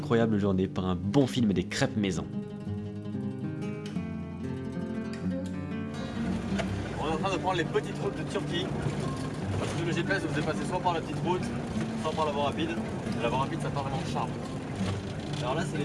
journée par un bon film et des crêpes maison. On est en train de prendre les petites routes de Turquie. Parce que le GPS vous faisait passer soit par la petite route, soit par la voie rapide. Et la voie rapide, ça part vraiment de charme. Alors là, c'est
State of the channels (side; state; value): both; identical; correlation 1.00